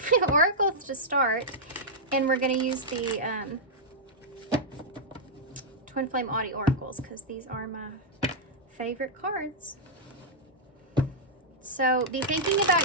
Oracles to start, and we're going to use the TwinFlame Audi oracles because these are my favorite cards. So be thinking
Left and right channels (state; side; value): normal; both; correlation -0.07